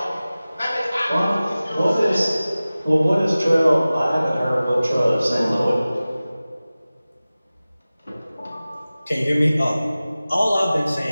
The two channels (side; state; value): both; inverted; correlation -0.97